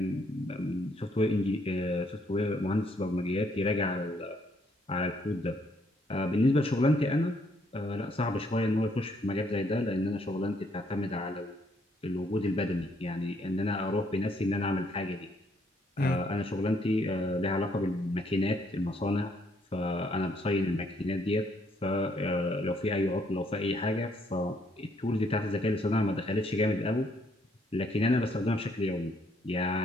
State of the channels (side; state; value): both; normal; correlation 0.69